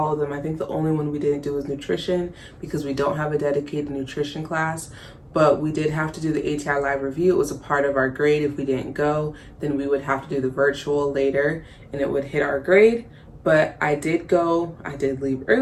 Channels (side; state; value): both; identical; correlation 1.00